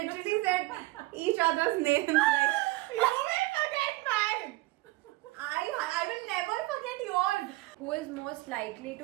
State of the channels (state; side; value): quieter; left; 20.6 dB